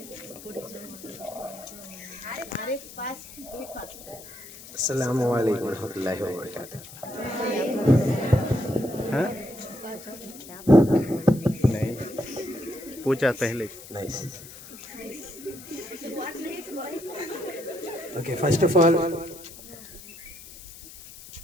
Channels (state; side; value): noise; left; hiss, 16 dB below the sound